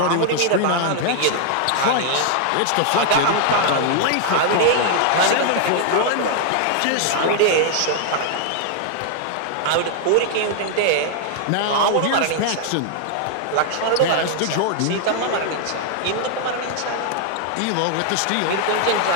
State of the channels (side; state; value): both; different; correlation -0.01